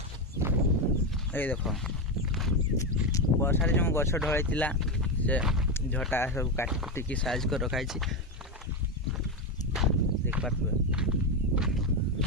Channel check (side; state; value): both; normal; correlation 0.12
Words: ये देख वर्षा जो गछ ढलाई से झटा सब काटी साइज कर रखाई देख पारे।